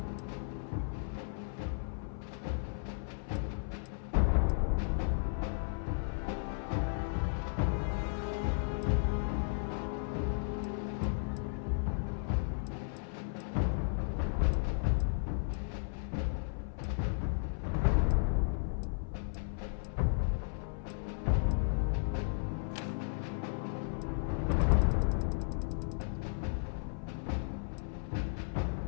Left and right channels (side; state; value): right; silent; 55 dB below the other